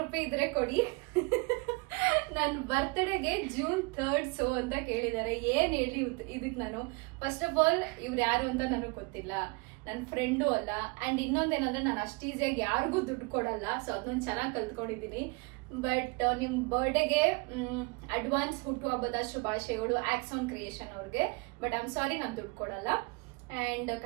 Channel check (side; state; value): left; quieter; 28.8 dB